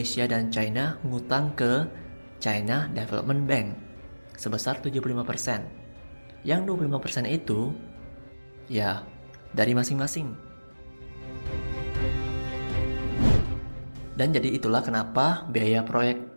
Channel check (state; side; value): inverted; both; correlation -1.00